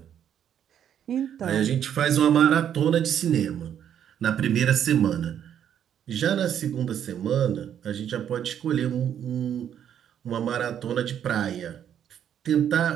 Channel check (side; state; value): left; quieter; 9.5 dB